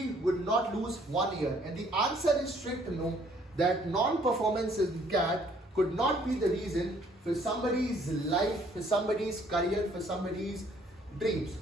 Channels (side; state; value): both; normal; correlation 0.62